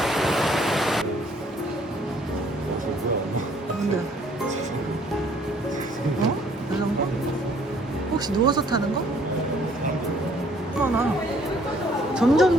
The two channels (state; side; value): normal; both; correlation 0.61